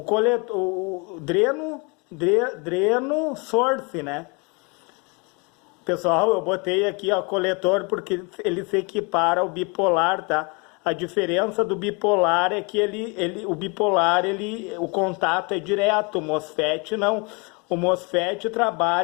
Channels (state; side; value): quieter; right; 30.8 dB